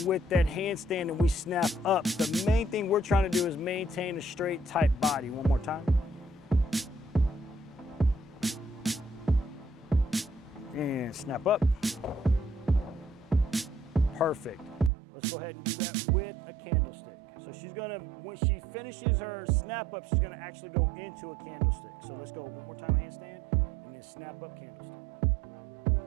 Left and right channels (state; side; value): drops out; left; at 14.9 s